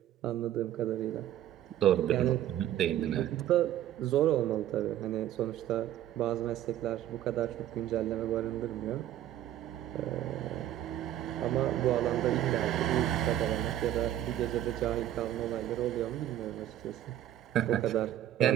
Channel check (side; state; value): left; quieter; 12.3 dB